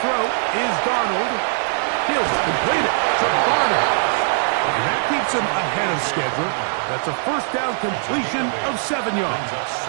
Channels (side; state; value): left; silent; 59 dB below the other